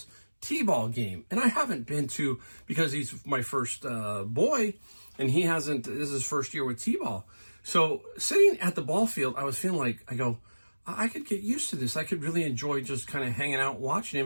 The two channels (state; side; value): inverted; both; correlation -1.00